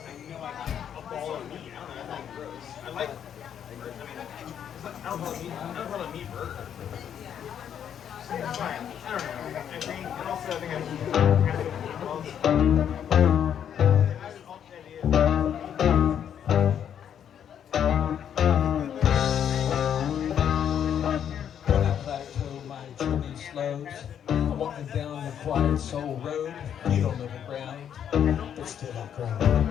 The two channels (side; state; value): right; quieter; 9.0 dB